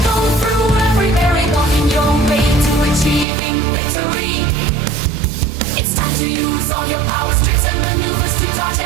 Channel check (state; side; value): drops out; left; at 3.2 s